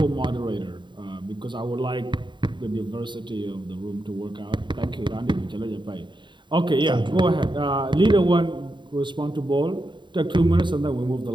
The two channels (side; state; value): left; late; 0.23 ms